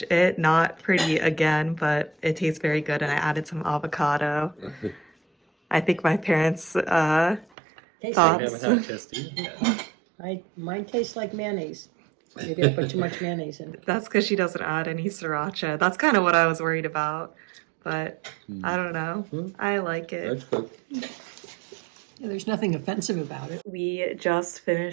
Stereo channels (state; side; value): drops out; left; at 7.5 s